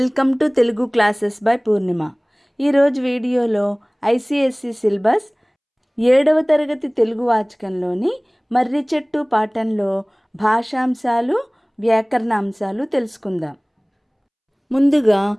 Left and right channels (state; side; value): identical; both; correlation 1.00